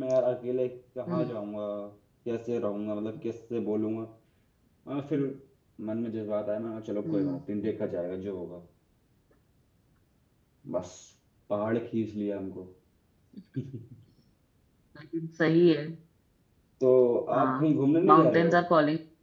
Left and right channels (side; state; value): both; identical; correlation 1.00